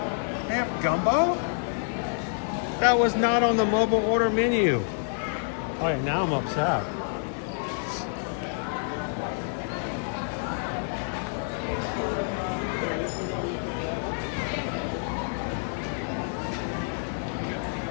They have gumbo? That was not on the mobile order menu. Oh, yeah, now I'm upset.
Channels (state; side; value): silent; right; digital silence